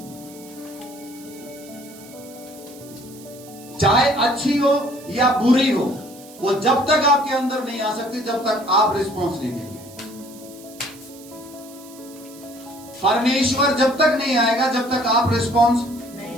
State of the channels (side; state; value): right; noise; hiss, 20 dB below the sound